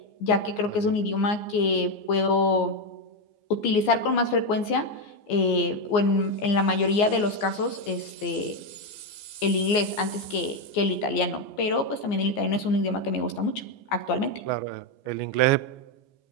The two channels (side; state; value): right; late; 14 ms